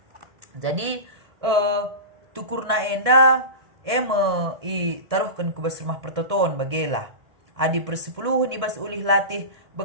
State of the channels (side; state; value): left; late; 1.7 ms